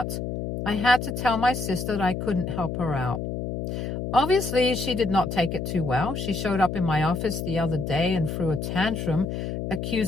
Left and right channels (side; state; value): left; noise; hum, 4 dB below the sound